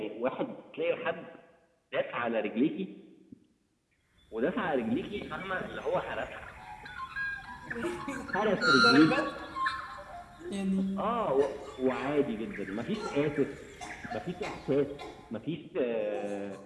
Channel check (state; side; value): identical; both; correlation 1.00